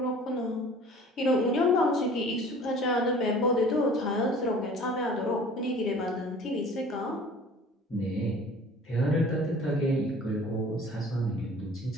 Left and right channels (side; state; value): both; normal; correlation 0.47